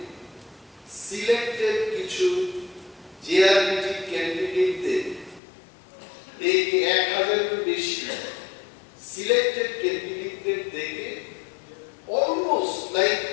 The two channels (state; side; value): drops out; right; at 5.4 s